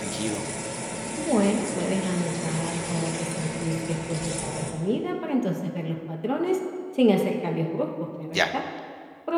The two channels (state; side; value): identical; both; correlation 1.00